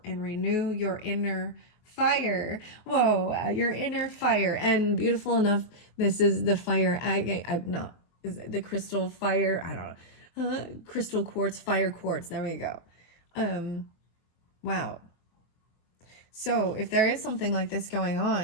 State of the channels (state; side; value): late; right; 23 ms